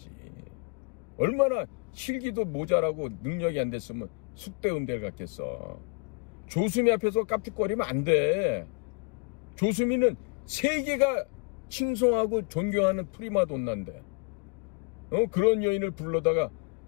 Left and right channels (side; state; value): right; quieter; 33.4 dB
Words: 얼마나 실기도 모자라고 능력이 안 됐으면 숙대 음대를 갔겠어. 조수미 앞에서 깝죽거리면 안 돼. 조수미는 세계가 칭송하고 존경하는 프리마돈나인데 그런 여인을 불러다가